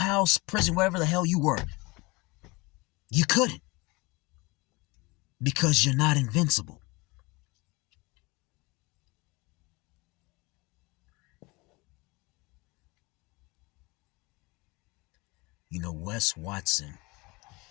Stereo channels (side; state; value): right; quieter; 24.9 dB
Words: prison, wherever the hell you were? You couldn't. Because you're not invincible. You know, Wes Watson,